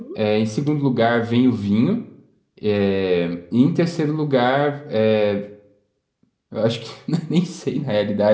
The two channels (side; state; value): both; identical; correlation 1.00